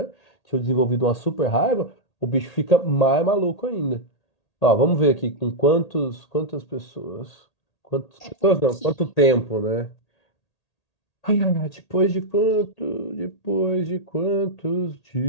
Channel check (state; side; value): late; right; 1.8 ms